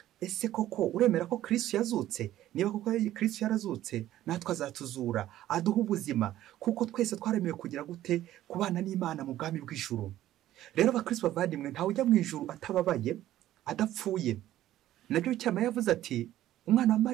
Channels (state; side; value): quieter; left; 13.6 dB